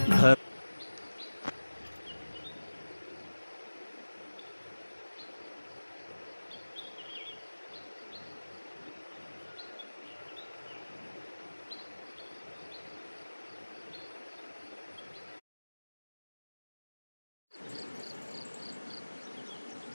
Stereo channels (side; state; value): both; inverted; correlation -1.00